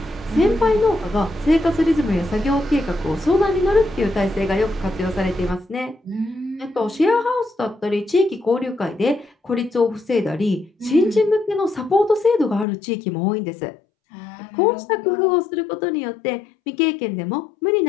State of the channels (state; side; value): drops out; right; at 12.7 s